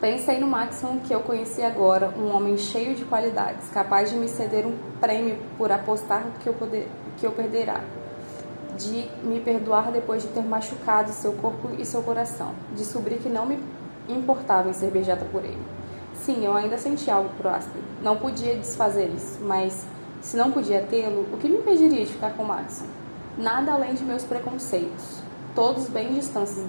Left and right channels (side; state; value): both; inverted; correlation -1.00